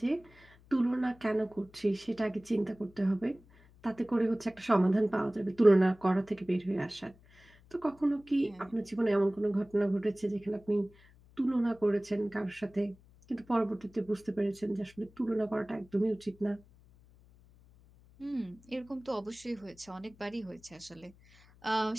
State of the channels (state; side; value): noise; left; hum, 26 dB below the sound